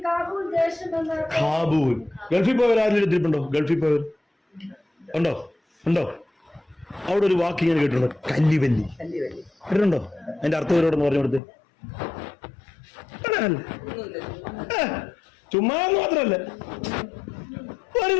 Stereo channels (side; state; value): right; drops out; at 11.4 s